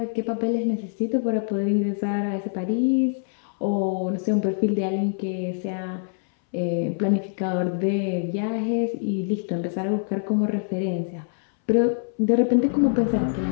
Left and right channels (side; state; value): right; silent; 62 dB below the other